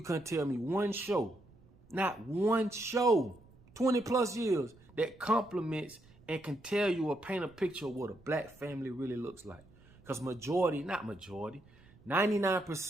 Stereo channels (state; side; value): noise; right; rumble, 26 dB below the sound